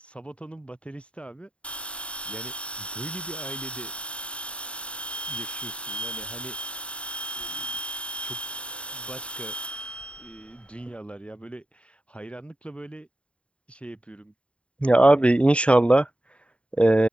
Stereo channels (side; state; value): right; late; 0.060 ms